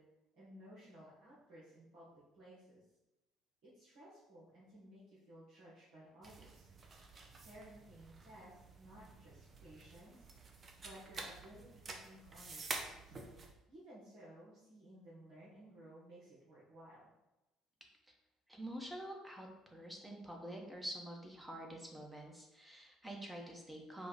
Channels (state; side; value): normal; both; correlation 0.76